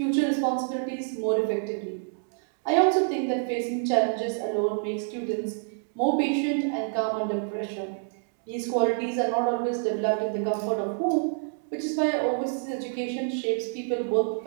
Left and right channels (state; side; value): silent; left; digital silence